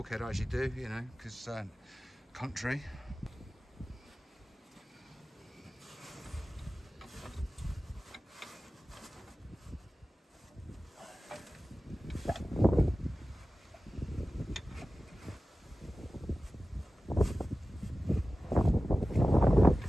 as you do, you know, because country.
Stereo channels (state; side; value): normal; both; correlation 0.96